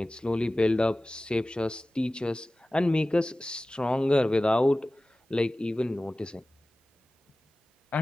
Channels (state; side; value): normal; both; correlation 0.97